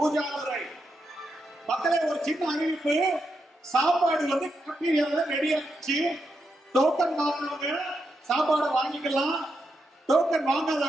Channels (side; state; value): both; normal; correlation 0.84